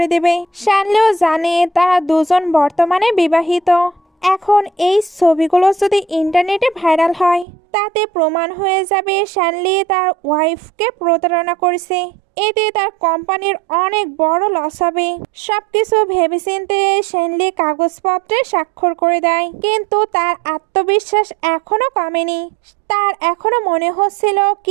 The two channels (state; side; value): drops out; left; at 7.5 s